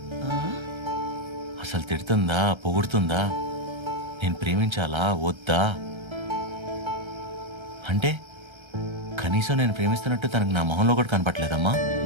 అసలు తిడుతుందా పొగుడుతుందా, నేను ప్రేమించాలా వద్దా అంటే కనీసం నేను ప్రేమిస్తున్నట్టు తనకు నా మొహంలో కూడా కనపట్లేదమ్మా.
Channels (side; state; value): left; late; 1.3 ms